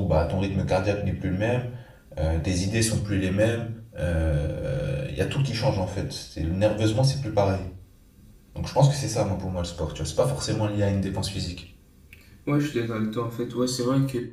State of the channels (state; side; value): identical; both; correlation 1.00